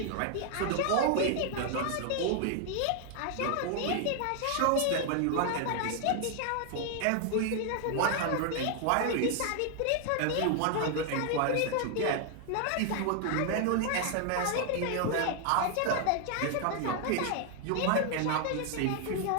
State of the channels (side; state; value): both; different; correlation 0.00